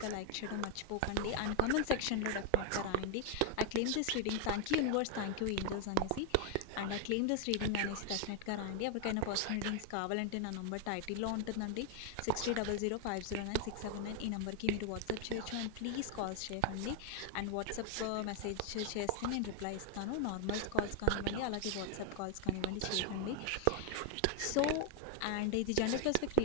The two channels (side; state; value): both; different; correlation 0.00